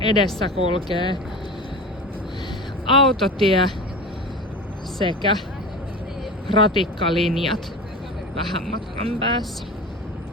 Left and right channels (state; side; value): normal; both; correlation 0.31